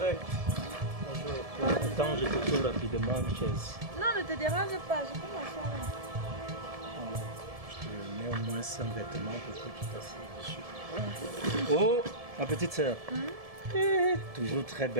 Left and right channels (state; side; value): late; left; 1.7 ms